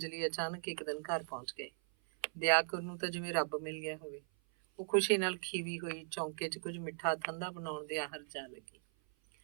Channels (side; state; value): left; silent; 52 dB below the other